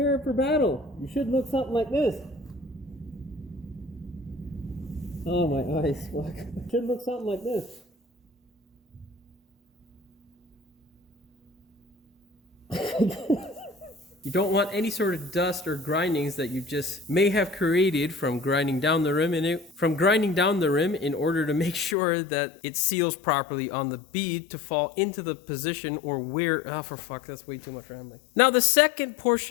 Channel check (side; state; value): right; drops out; at 22.0 s